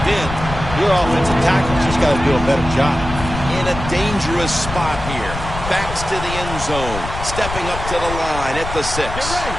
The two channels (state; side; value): noise; left; rumble, 8 dB below the sound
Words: end. Your offensive tackle's just got to do a better job. In a dangerous spot here. Backs to the end zone. Stepping up to the line at the 6.